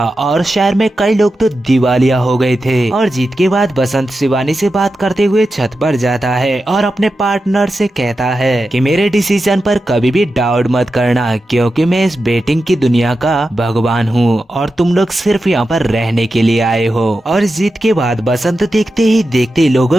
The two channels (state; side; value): normal; both; correlation 0.91